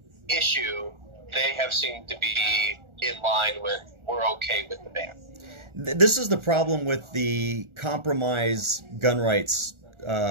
issue, they have seemed to be in line with, we're okay with the ban. This is the problem with the compromise gun rights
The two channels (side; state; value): left; late; 1.4 ms